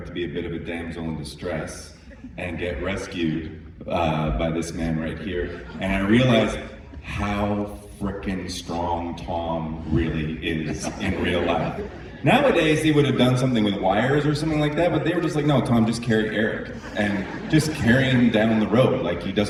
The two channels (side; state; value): both; identical; correlation 1.00